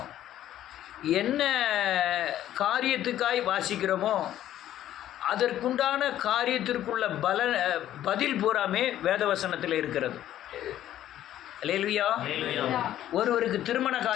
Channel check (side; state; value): right; quieter; 12.3 dB